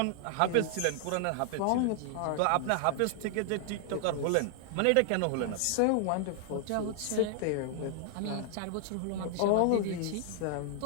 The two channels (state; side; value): different; both; correlation 0.00